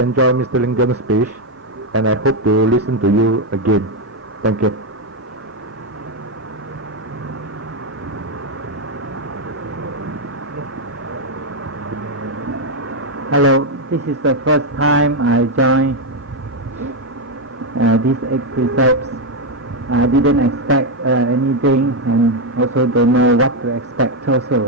Mr. Lingam's speech, and I hope to listen to you again. Thank you. Hello, this is the first time I joined these 8 precepts. I didn't expect anything, and also don't know what to expect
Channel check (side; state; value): both; normal; correlation 0.03